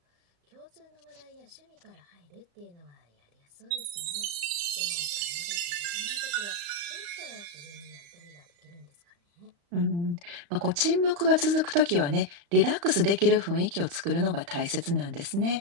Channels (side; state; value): left; late; 35 ms